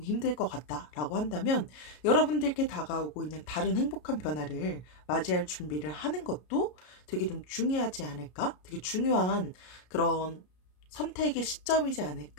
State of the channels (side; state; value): right; late; 33 ms